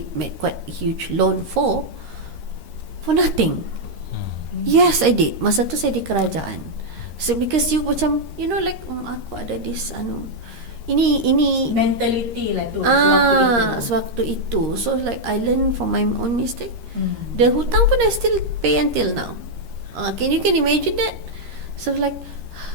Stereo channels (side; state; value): left; late; 13 ms